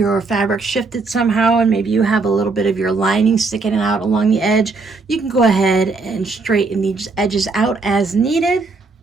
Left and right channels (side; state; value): left; quieter; 4.0 dB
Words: fabric shifted somehow and maybe you have a little bit of your lining sticking out along the edge, you can go ahead and straighten these edges out as needed.